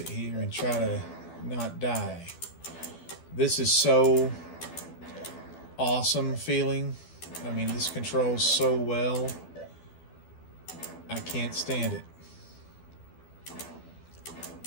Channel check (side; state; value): right; late; 12 ms